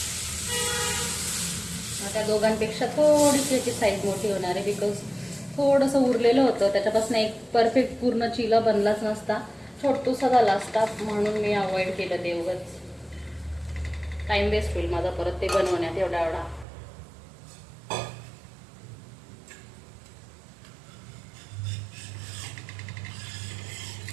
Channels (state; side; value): drops out; left; at 16.7 s